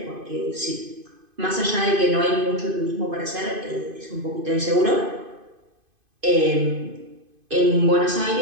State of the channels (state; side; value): late; left; 2.5 ms